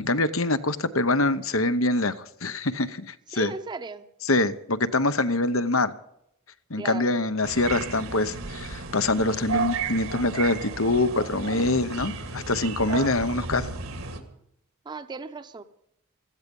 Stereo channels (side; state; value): both; normal; correlation 0.01